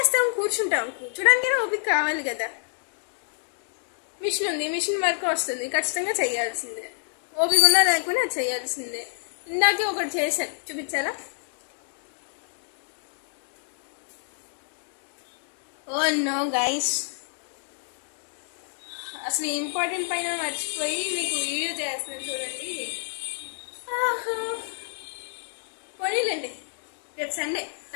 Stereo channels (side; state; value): right; silent; digital silence